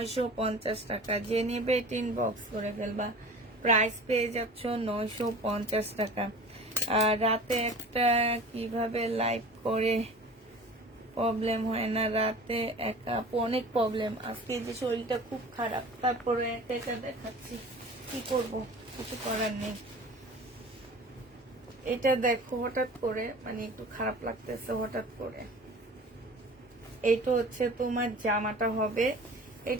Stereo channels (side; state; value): both; normal; correlation 0.40